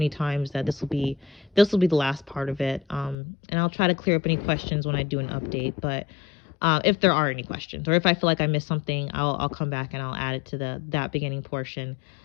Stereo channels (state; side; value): drops out; right; at 3.2 s